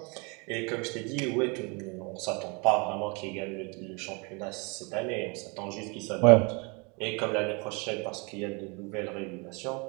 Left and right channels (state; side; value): quieter; left; 30.9 dB